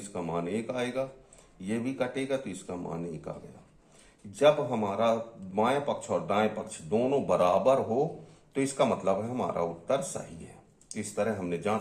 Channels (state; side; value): identical; both; correlation 1.00